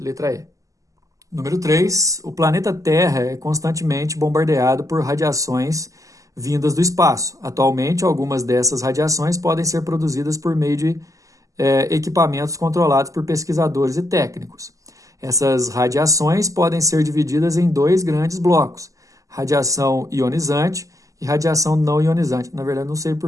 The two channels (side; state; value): left; late; 0.16 ms